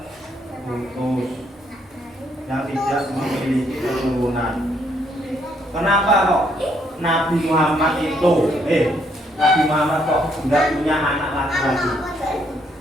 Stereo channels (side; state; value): both; normal; correlation 0.71